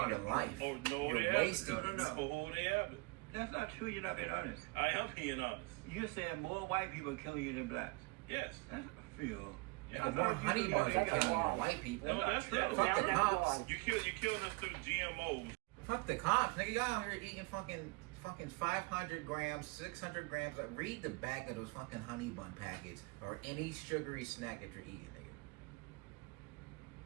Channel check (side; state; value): left; quieter; 26.7 dB